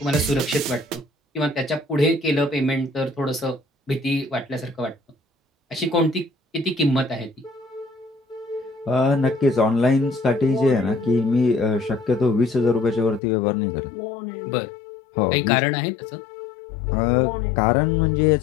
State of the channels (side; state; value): right; drops out; at 13.2 s